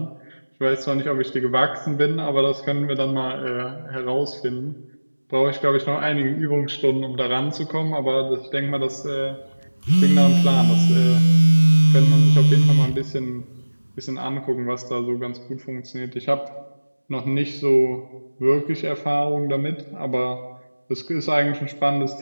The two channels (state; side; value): inverted; both; correlation -1.00